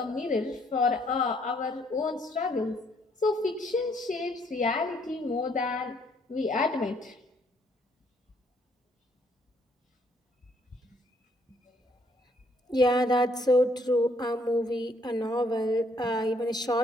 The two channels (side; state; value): both; normal; correlation 0.68